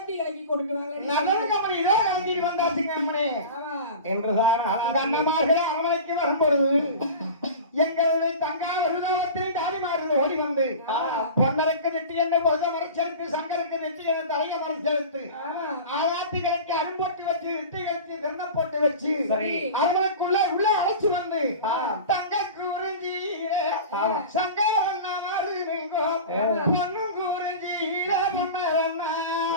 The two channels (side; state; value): both; inverted; correlation -0.34